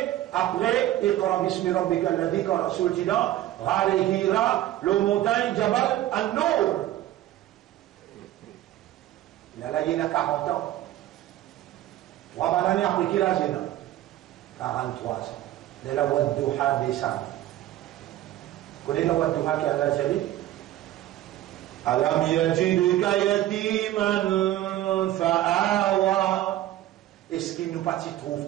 après, Iqra bismi rabbika alladhi quand Rasoul dit là, Ghar Hira, le montagne Jabal An-Nur. Là, il y a 40 ans. 3 années après qu'il a 43 ans. De la Wadduha descend. Vous connaissez la Wadduha qui a la Jali? Alam yajidka yatiman fa'awa. Est-ce qu'il nous partit trouve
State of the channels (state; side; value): quieter; left; 14.0 dB